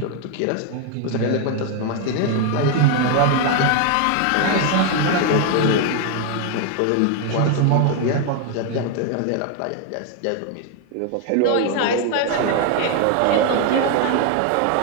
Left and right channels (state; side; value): different; both; correlation 0.01